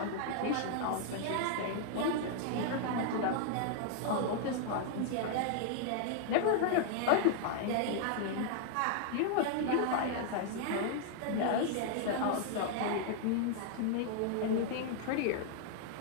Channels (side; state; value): both; different; correlation 0.00